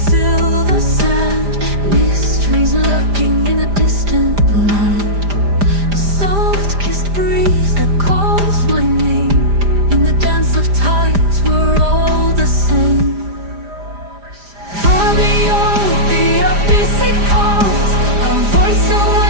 sand, mysteries lurking in a distant land. Soft-kissed breeze that calls my name. In the dance of tides, we're all the same. Far beyond the abyss it calls, a voice so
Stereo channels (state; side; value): late; left; 5.0 ms